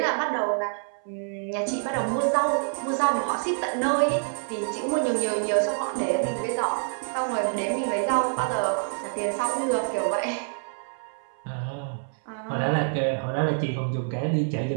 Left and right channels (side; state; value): left; silent; 60 dB below the other